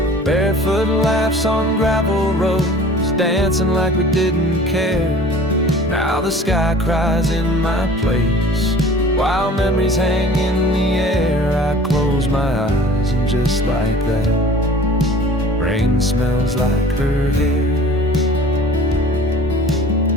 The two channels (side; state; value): both; normal; correlation 0.46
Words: Barefoot laughs on gravel roads, dancing like we didn't care. Now the sky cries in my place, while memories hang in the air. I close my eyes and just like that, rain smells like her hair.